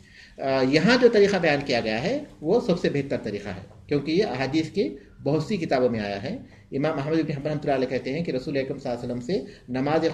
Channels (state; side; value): identical; both; correlation 1.00